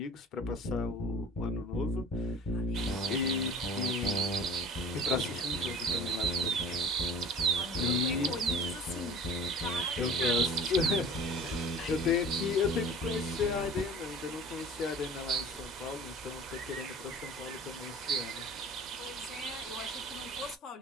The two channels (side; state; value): both; normal; correlation 0.42